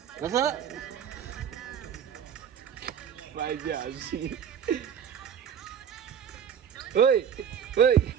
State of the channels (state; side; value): quieter; left; 8.4 dB